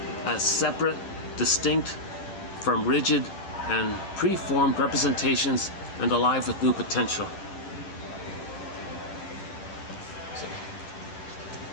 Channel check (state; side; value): late; right; 10 ms